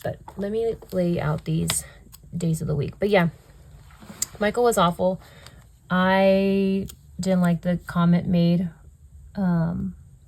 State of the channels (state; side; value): identical; both; correlation 1.00